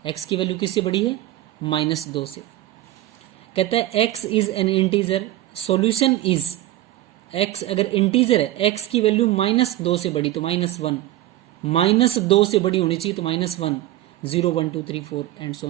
x की वैल्यू किससे बड़ी है, -2 से। कहता है x is an integer, solution is, x अगर इंटीजर है, x की वैल्यू -2 से बड़ी तो -1, -2 से बड़ी होनी चाहिए तो -1, 0 1 2 3 4 and so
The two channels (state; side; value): quieter; left; 15.2 dB